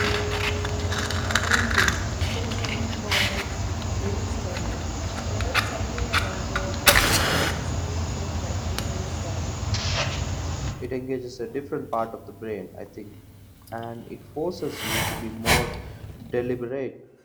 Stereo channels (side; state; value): both; identical; correlation 1.00